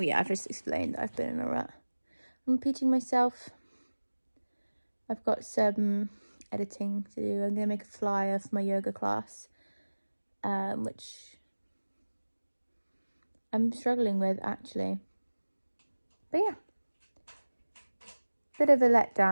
just explained that I've been in a rut. I'm repeating myself. I've got some editing to do. I'm going to make a flyer for my yoga class, which I'm struggling with actually. But yeah, bit of a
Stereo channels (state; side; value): inverted; both; correlation -1.00